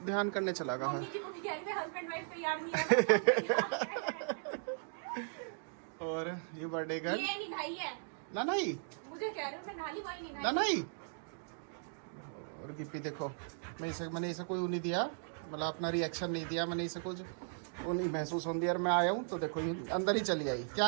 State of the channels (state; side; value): silent; left; digital silence